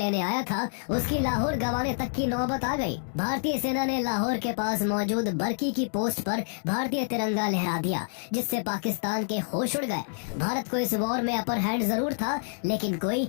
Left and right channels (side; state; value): right; silent; digital silence